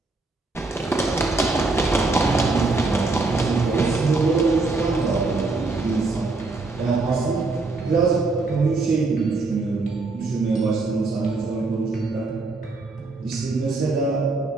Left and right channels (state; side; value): quieter; left; 3.5 dB